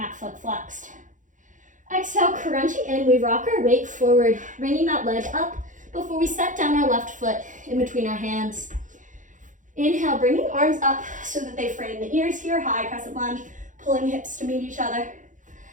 foot flexed. Exhale, crunching in, we rock our weight forward, bringing that leg up before we set down our left foot in between our hands. Inhale, bringing arms up so that they frame the ears here, high crescent lunge, pulling hips to meet each other.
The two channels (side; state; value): left; late; 0.37 ms